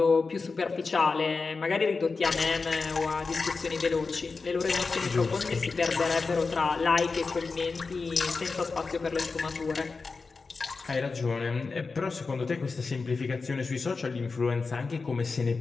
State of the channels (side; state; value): right; quieter; 4.4 dB